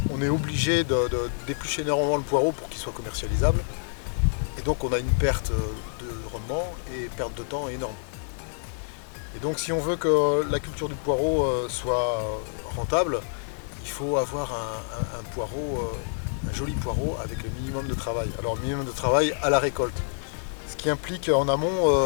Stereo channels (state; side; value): silent; right; digital silence